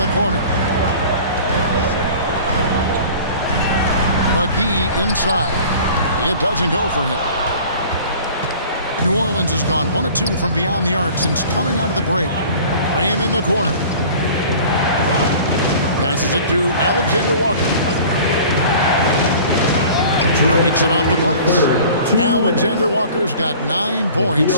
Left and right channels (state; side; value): inverted; both; correlation -0.44